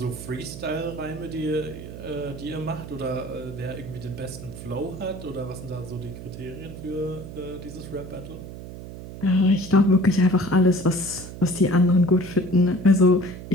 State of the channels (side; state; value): right; noise; hum, 12 dB below the sound